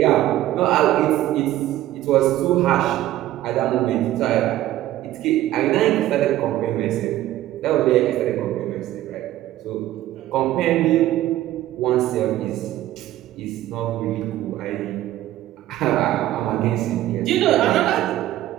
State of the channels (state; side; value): quieter; left; 14.2 dB